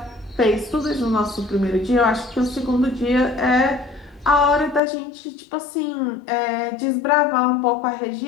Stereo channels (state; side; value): drops out; right; at 4.8 s